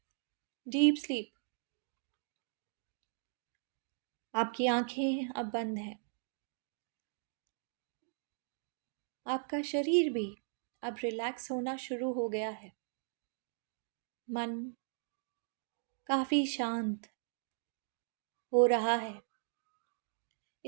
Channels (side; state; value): left; silent; digital silence